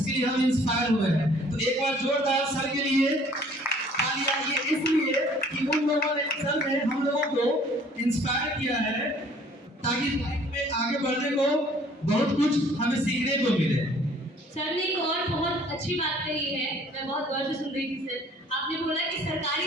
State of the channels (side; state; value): both; normal; correlation 0.55